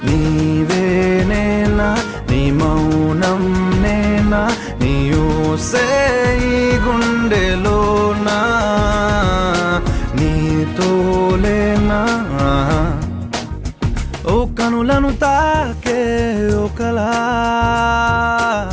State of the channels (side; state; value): both; identical; correlation 1.00